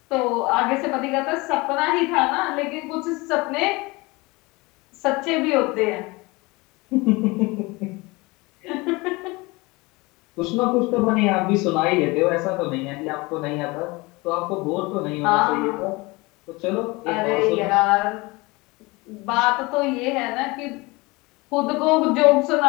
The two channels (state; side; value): quieter; right; 23.9 dB